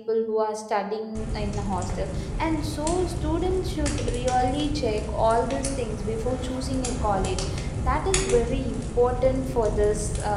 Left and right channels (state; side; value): identical; both; correlation 1.00